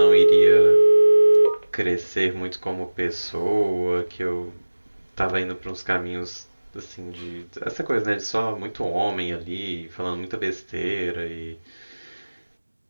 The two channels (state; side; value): inverted; both; correlation -1.00